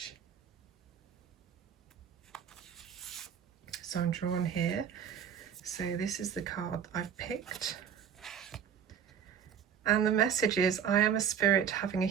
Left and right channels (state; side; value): quieter; left; 8.0 dB